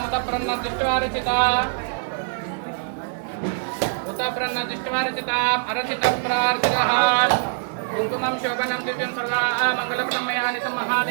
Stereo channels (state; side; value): silent; left; 63 dB below the other